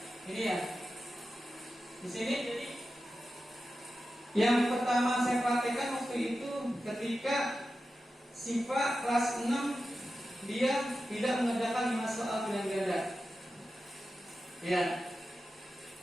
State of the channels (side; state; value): both; normal; correlation 0.92